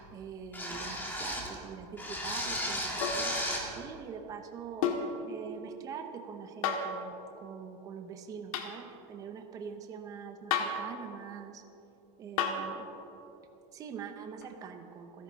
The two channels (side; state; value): both; normal; correlation 0.07